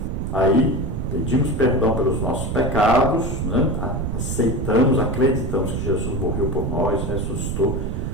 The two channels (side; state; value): right; noise; rumble, 2 dB below the sound